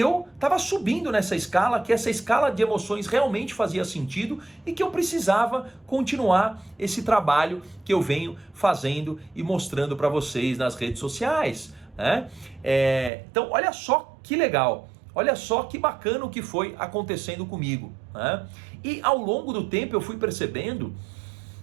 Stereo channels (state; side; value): drops out; left; at 13.1 s